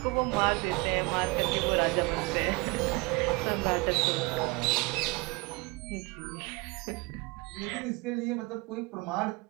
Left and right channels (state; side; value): quieter; left; 25.3 dB